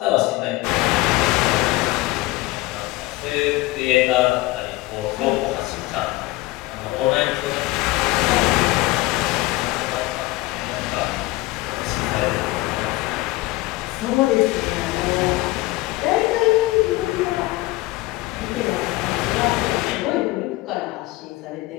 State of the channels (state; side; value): quieter; right; 19.9 dB